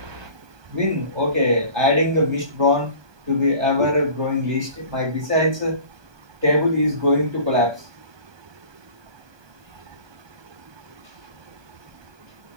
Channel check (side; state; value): left; late; 1.2 ms